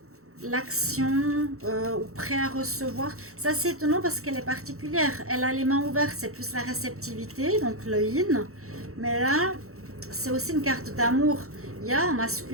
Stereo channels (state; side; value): late; left; 0.64 ms